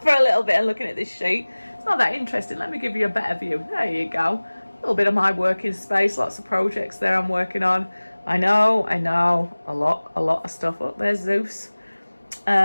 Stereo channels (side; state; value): both; inverted; correlation -1.00